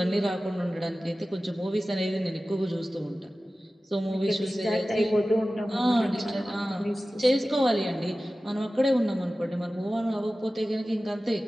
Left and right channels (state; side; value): normal; both; correlation 0.96